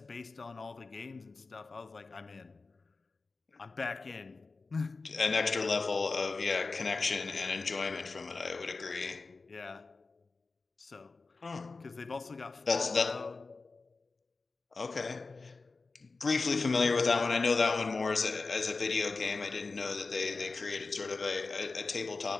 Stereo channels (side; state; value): right; quieter; 3.9 dB